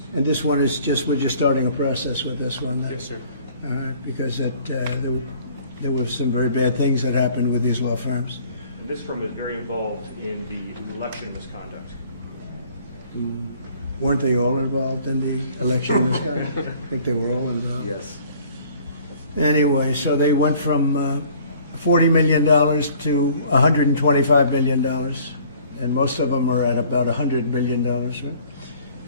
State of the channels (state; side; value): inverted; both; correlation -0.54